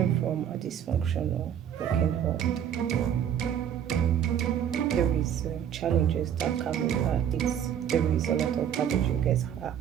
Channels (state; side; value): quieter; left; 9.3 dB